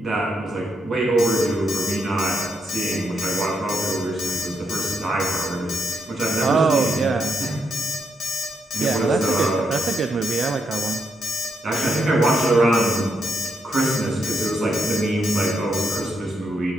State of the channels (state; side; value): normal; both; correlation 0.80